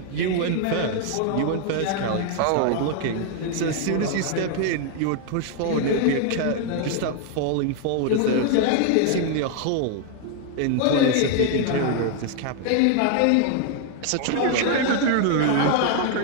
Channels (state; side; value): different; both; correlation 0.00